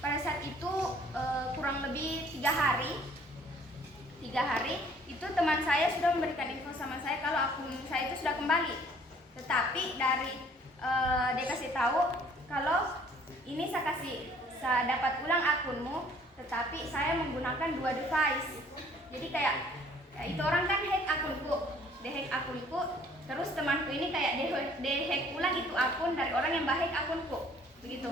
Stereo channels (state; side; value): normal; both; correlation 0.57